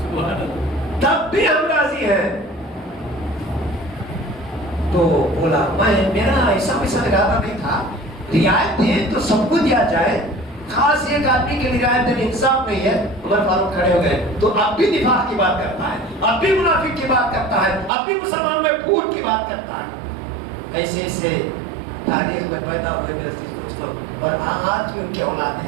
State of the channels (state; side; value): drops out; left; at 17.9 s